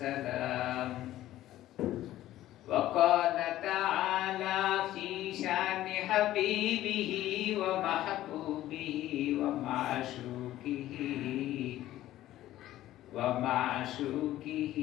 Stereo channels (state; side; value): quieter; right; 14.2 dB